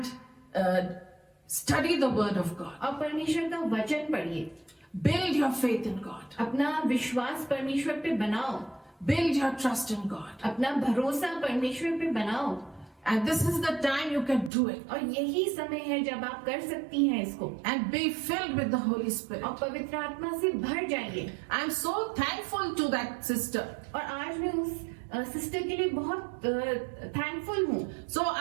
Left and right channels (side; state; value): left; drops out; at 14.5 s